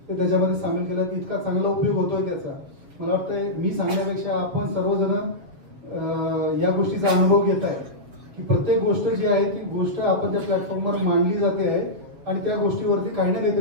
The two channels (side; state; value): left; late; 7.2 ms